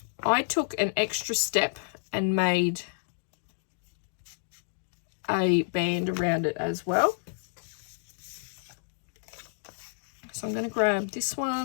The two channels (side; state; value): right; silent; digital silence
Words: I took an extra step and made a band around it as well. So I'm going to grab this